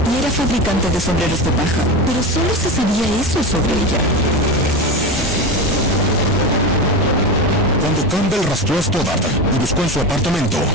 y era fabricante de sombreros de paja, pero solo se sabía eso sobre ella. Cuando Campbell rastreó a Stoddard y buscó en su apartamento,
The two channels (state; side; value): normal; both; correlation 0.22